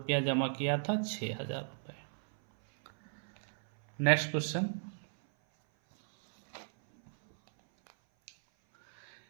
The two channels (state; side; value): silent; left; 55 dB below the other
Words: जमा किया था, 6,000 रुपये। Next question.